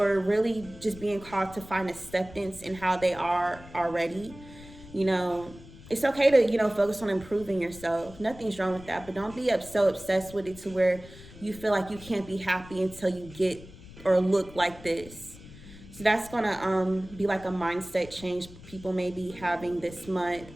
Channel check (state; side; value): noise; left; rumble, 18 dB below the sound